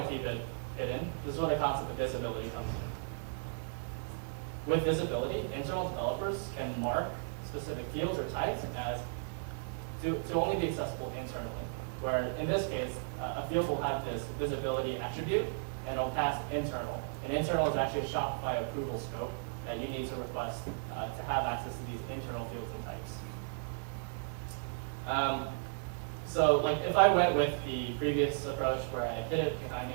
to keep it hidden, this is where the concept of visibility comes in. With visibility, internal developers can mark specific fields or types as to only be accessible internally. Where in this case, a field will have this visibility attribute, and it'll pass internal. And internal is actually a Shopify approval scope that you need to request to have access to these internal fields and types. So like if I went with the previous approach where I hid it behind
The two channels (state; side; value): silent; left; digital silence